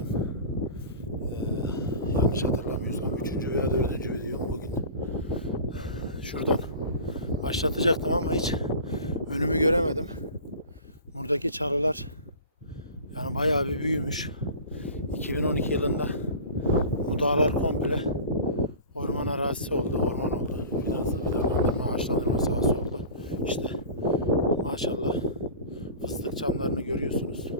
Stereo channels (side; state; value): both; inverted; correlation -0.38